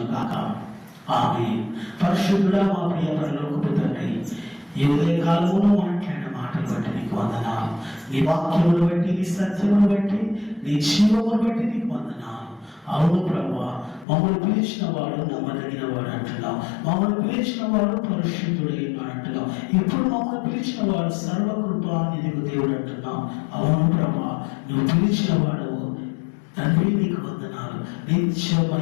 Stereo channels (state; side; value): drops out; right; at 14.1 s